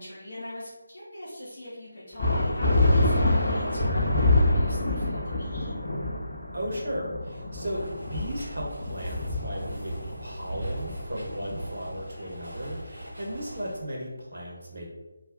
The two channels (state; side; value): inverted; both; correlation -0.76